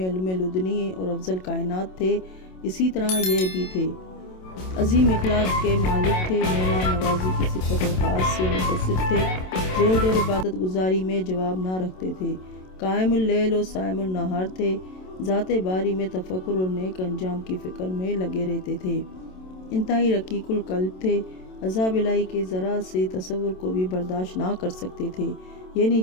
لدنی اور افضل کائنات تھے، اسی طرح یہ بھی تھے۔ عظیم اخلاق کے مالک تھے، مہمان نوازی کی صفت خاص سے متصف تھے، زہد اور عبادت گزاری میں جواب نہ رکھتے تھے، قائم اللیل اور صائم النہار تھے، ذات باری میں تفکر اور نیک انجام کی فکر میں لگے رہتے تھے، انتہائی رقیق القلب تھے، عذاب الہی کے ذرا سے تصور کو بھی برداشت نہ کر سکتے تھے، یعنی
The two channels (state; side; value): late; right; 27 ms